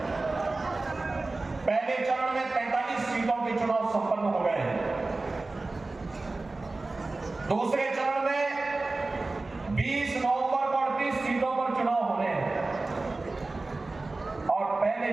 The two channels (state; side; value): quieter; left; 3.3 dB